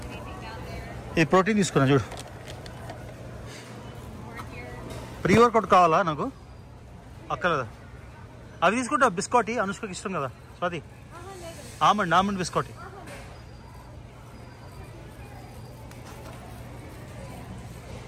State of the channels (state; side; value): identical; both; correlation 1.00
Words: ఇది ప్రోటీన్ తీసుకున్నా చూడు. ప్రీ వర్కౌట్ కావాలా నాకు? అక్కర్లేదా? అవి తీసుకుంటా. బిస్కట్ అనుష్కకి ఇష్టం కదా స్వాతి. Almond biscuit.